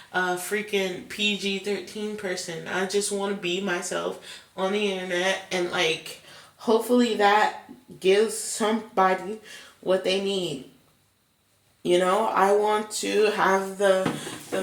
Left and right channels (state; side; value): identical; both; correlation 1.00